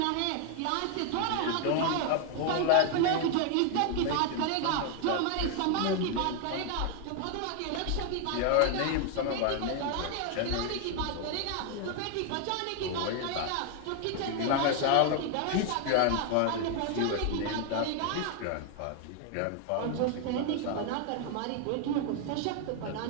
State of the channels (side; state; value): both; different; correlation 0.01